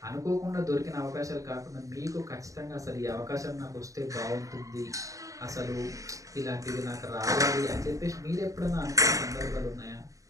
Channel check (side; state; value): left; late; 0.16 ms